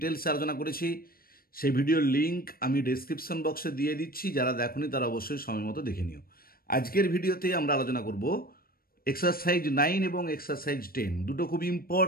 আলোচনা করেছি। সেই ভিডিওর লিঙ্ক আমি ডেসক্রিপশন বক্সে দিয়ে দিচ্ছি, যারা দেখোনি তারা অবশ্যই সময় মতো দেখে নিও। আজকের ভিডিওতে আমরা আলোচনা করব এক্সারসাইজ 9 এবং এক্সারসাইজ 10, দুটো খুব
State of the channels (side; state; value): right; late; 0.43 ms